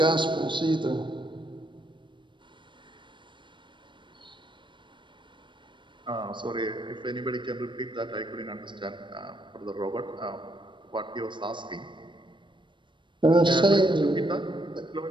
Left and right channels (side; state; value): left; late; 0.23 ms